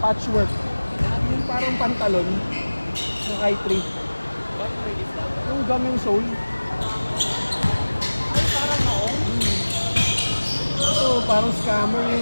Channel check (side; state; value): both; inverted; correlation -1.00